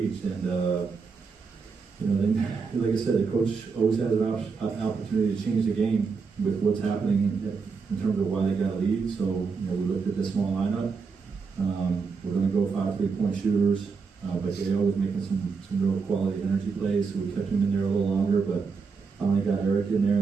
And then, like I said, the coach always has an opportunity to change the game with what's happening in terms of why they got a lead. So we looked at the small lineup. We're going to go 5 3-point shooters, but they always making some real quality energy plays. So we kept him in there a little longer, but finally got Eric in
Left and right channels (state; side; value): quieter; left; 5.1 dB